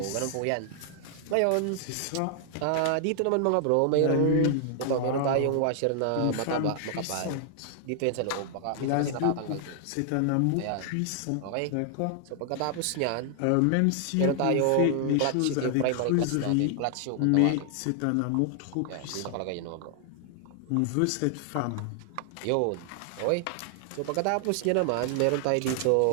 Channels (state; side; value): different; both; correlation 0.00